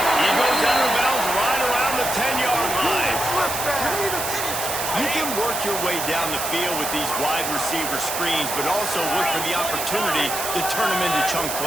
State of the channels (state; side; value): noise; right; hiss, 4 dB below the sound